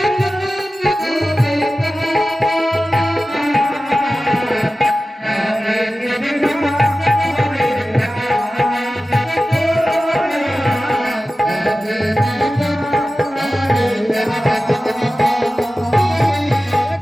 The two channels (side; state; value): both; normal; correlation 0.95